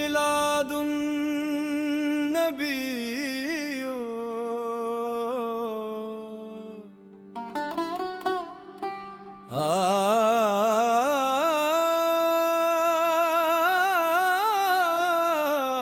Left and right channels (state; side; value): identical; both; correlation 1.00